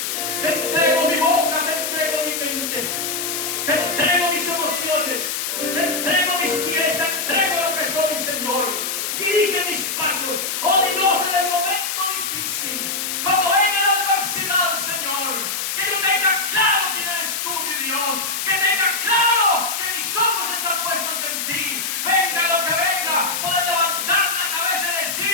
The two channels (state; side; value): noise; left; hiss, 2 dB below the sound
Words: te entrego mi boca, te entrego mi mente, te entrego mis emociones, te entrego mis pies, te entrego lo que soy, Señor. Dirige mis pasos, oh Dios, en el momento difícil, cuando venga la adversidad, Señor, que yo tenga claro quién eres tú, mi Dios, que tenga claro que mis ojos están puestos en ti. Venga lo que venga, poder levantar la cabeza y